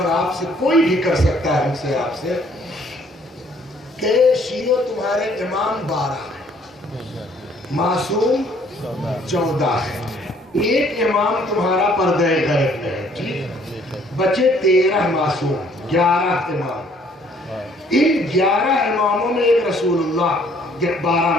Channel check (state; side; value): normal; both; correlation 0.61